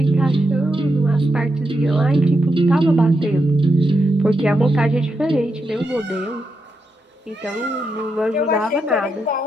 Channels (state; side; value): normal; both; correlation 0.84